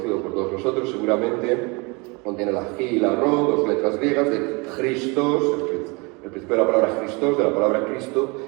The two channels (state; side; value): quieter; left; 28.6 dB